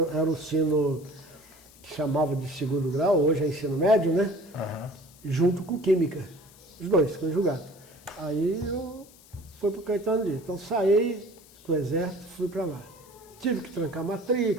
o ensino que chamava de segundo grau, hoje é ensino médio, né? Junto com Química, os dois, conjugados. Aí eu fui para o Caetano Dias. Então saí do Exército, fui para lá. Tive que trancar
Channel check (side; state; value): left; noise; hiss, 24 dB below the sound